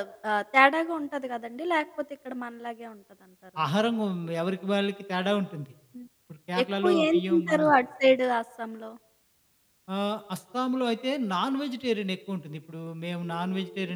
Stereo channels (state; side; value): identical; both; correlation 1.00